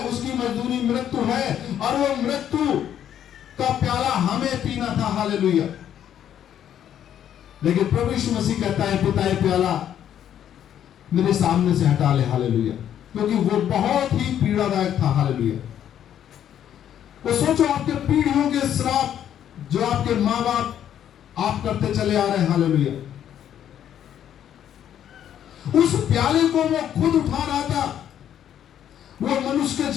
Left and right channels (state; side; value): quieter; right; 10.1 dB